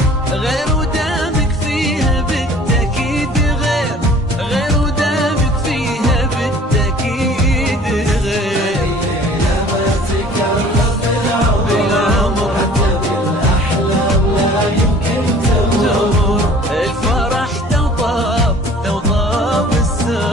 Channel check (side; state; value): both; normal; correlation 0.49